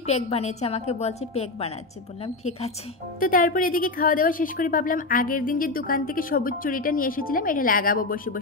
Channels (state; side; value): quieter; right; 3.2 dB